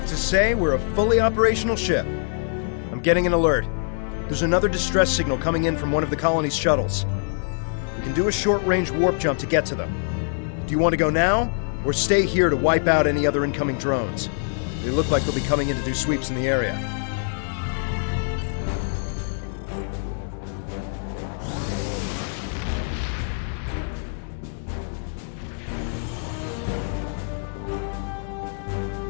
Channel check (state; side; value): silent; right; digital silence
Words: to say we're a fully operational ship. I'm getting an alert. There's another distress signal coming in from one of the colony's shuttles. We can do a short-range warp jump to get to them. Do you want to go now, or stay here to wipe out any other incoming drones? They look like they'll be coming in to do sweeps in the area.